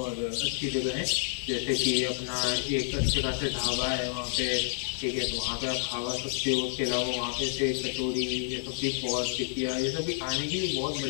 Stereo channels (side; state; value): right; silent; digital silence